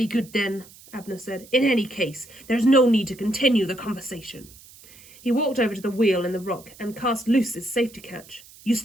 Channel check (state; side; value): noise; right; hiss, 22 dB below the sound